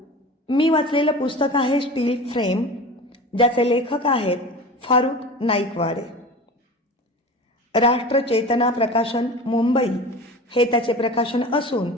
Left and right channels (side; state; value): both; normal; correlation 0.34